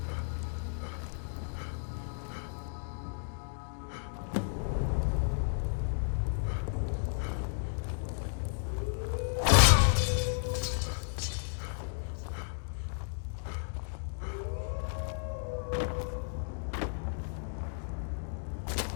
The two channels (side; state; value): right; silent; digital silence